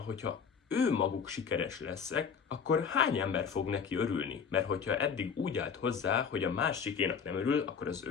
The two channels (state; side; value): quieter; right; 6.5 dB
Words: ő maguk sikeres leszek, akkor hány ember fog neki örülni? Mert hogyha eddig úgy állt hozzá, hogy a másikénak nem örül, akkor az